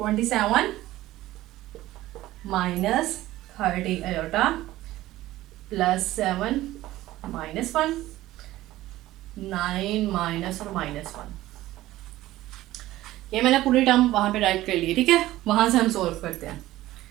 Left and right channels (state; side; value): quieter; left; 16.0 dB